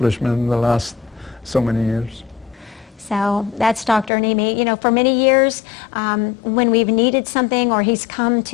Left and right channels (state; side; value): drops out; right; at 4.1 s